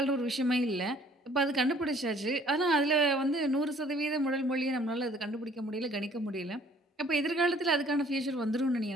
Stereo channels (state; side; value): normal; both; correlation 0.58